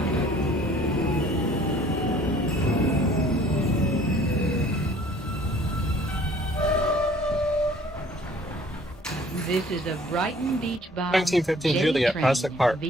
This is a Brighton Beach bound 1915 J Juliet, train Prospect Park.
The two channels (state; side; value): normal; both; correlation 0.54